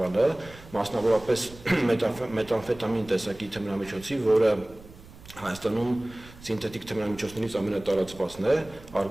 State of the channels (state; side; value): noise; right; rumble, 20 dB below the sound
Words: մասնավորապես մետամֆետամին տեսակի թմրամիջոցի, որը Հայաստանում սինթետիկ թմրամիջոցներից ամենատարածվածն է,